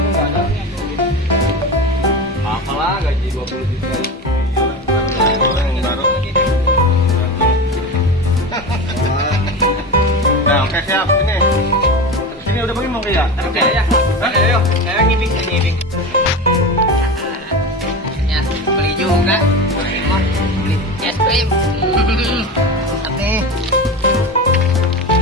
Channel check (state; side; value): normal; both; correlation 0.26